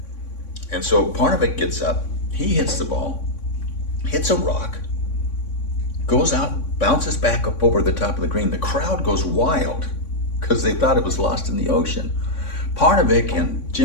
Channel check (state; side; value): late; right; 3.6 ms